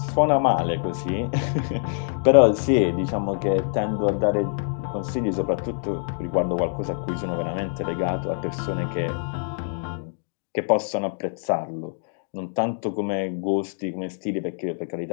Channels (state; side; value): silent; right; 62 dB below the other